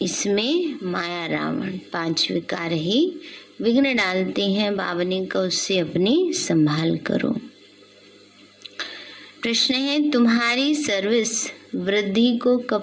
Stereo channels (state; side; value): identical; both; correlation 1.00